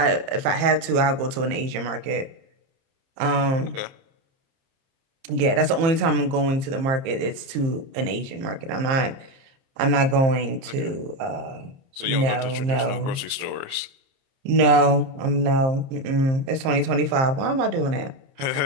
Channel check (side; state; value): left; late; 30 ms